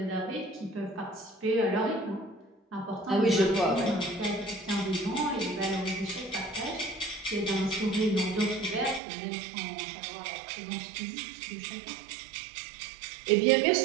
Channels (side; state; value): left; drops out; at 9.0 s